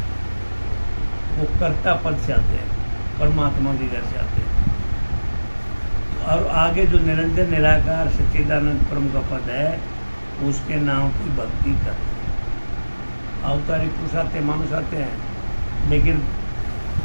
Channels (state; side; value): inverted; both; correlation -1.00